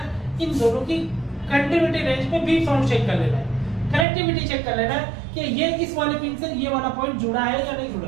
इन दोनों की कंडक्टिविटी रेंज पे बीप साउंड चेक कर लेना है, कनेक्टिविटी चेक कर लेना है कि ये इस वाले पिन से ये वाला पॉइंट जुड़ा है या नहीं जुड़ा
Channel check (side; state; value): left; drops out; at 4.0 s